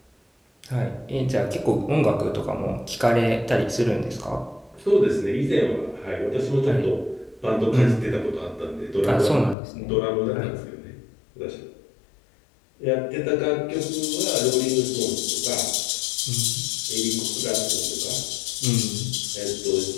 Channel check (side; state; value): right; drops out; at 9.6 s